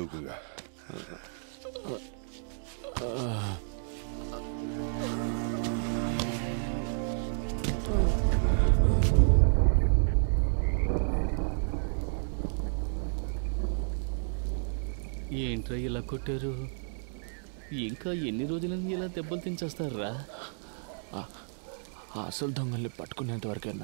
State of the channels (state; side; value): silent; left; digital silence